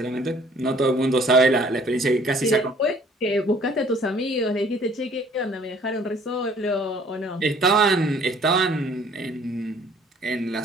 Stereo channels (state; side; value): normal; both; correlation 0.57